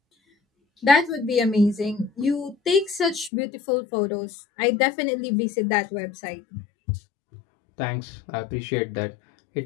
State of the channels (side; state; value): right; drops out; at 3.3 s